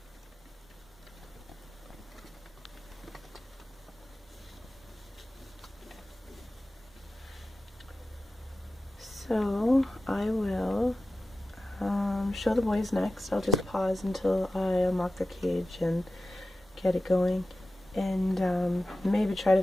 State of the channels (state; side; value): normal; both; correlation 0.93